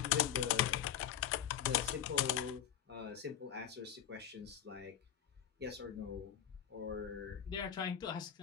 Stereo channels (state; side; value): quieter; right; 10.0 dB